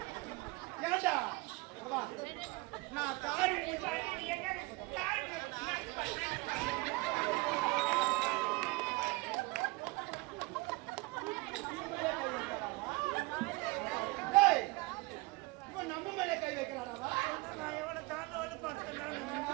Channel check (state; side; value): quieter; left; 24.0 dB